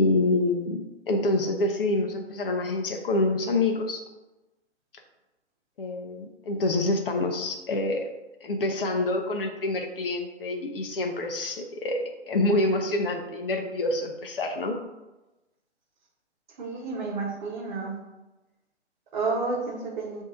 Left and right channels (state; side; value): normal; both; correlation -0.09